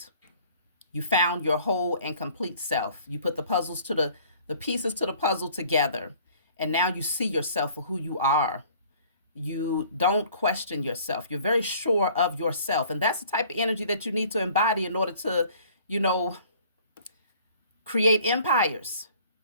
You found your whole and complete self. You put the pieces to the puzzle together. And now you see yourself for who you are. You don't question yourself. You're very sure of yourself. And that's the type of energy that you need to embody in order to, create empires,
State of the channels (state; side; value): inverted; both; correlation -0.53